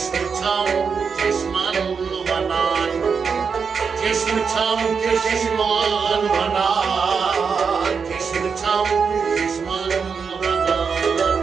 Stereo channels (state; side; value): quieter; left; 5.8 dB